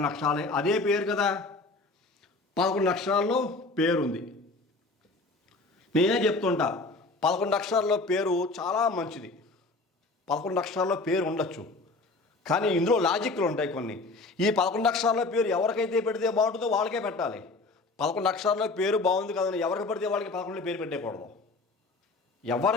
అక్షరాలే. అదే పేరు కదా, 11 అక్షరాల్లో పేరుంది. నేనే చెప్తుంటా 11 అక్షరాల్లో పేరు చాలా మంచిది. 11 అక్షరాల్లో పేరు ఉండొచ్చు, కానీ ఇందులో లాజిక్లు ఉంటాయి కొన్ని. ఈ 11 అక్షరాల పేరు ఎవరికైతే పెడితే బాగుంటుందో వాళ్ళకే పెట్టాలి. 11 అక్షరాల పేరు బాగుంది కదని ఎవరికి పడితే వాళ్ళకి 11 పేరు పెట్టేయకూడదు,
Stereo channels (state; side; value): quieter; right; 3.5 dB